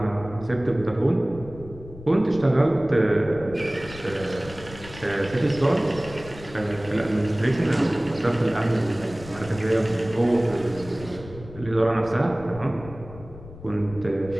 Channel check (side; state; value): left; noise; rumble, 16 dB below the sound